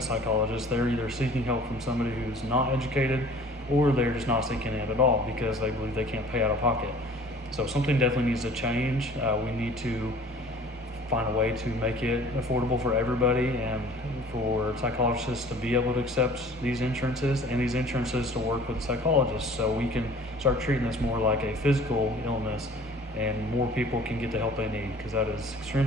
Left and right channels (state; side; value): normal; both; correlation 0.49